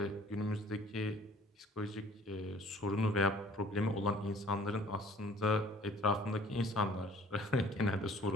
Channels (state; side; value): normal; both; correlation 0.53